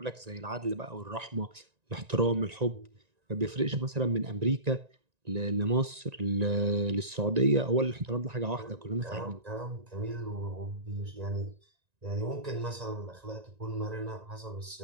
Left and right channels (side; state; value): left; late; 1.9 ms